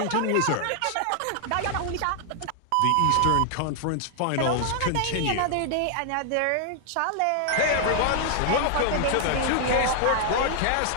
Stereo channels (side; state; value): both; different; correlation 0.00